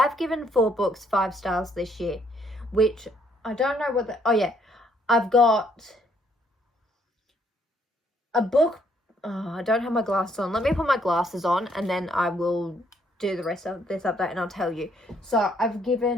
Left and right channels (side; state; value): both; normal; correlation 0.68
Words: given 4 books 5 stars this year, which I don't know what oh yeah, I've got a book. Oh, I don't have my glasses on. Let me put my glasses on and then I will do the rest of this update and I'll tell you. So I've